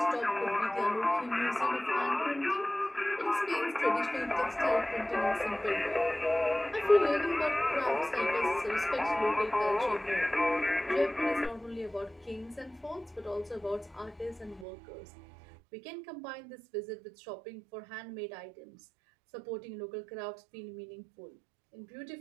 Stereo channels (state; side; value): drops out; left; at 14.7 s